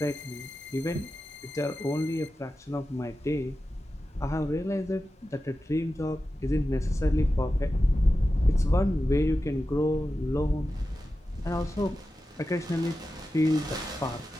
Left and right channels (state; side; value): normal; both; correlation 0.93